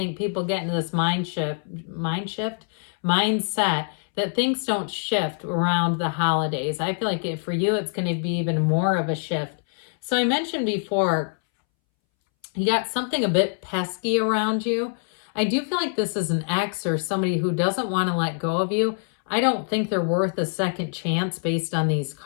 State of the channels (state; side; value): silent; right; 62 dB below the other